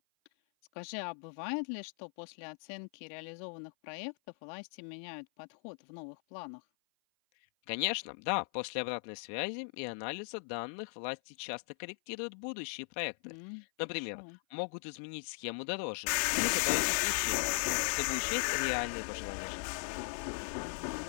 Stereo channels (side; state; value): right; silent; 52 dB below the other